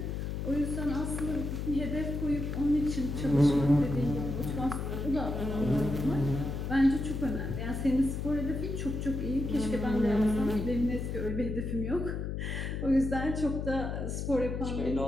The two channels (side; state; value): left; noise; hum, 3 dB below the sound